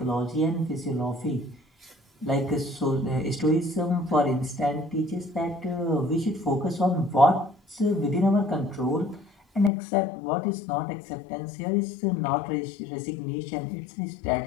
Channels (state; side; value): drops out; right; at 9.7 s